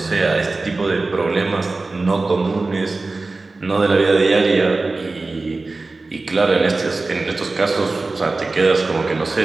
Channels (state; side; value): quieter; left; 3.5 dB